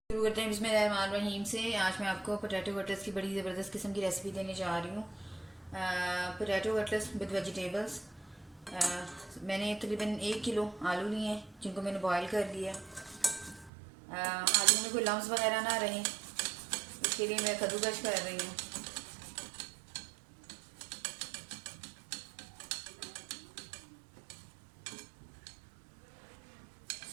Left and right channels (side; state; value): left; drops out; at 13.7 s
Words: करते हैं बिस्मिल्लाहिर्रहमानिर्रहीम से। आज मैं आपको पोटैटो कटलेट्स की बड़ी ज़बरदस्त किस्म की रेसिपी देने जा रही हूँ। Potato cutlets with vegetables. मैंने तकरीबन 1 किलो आलू लिए हैं जिनको मैंने बॉयल कर लिया। आलू में कोई लम्स वगैरह ना रहे, इसके लिए मैं कद्दूकस कर रही हूँ।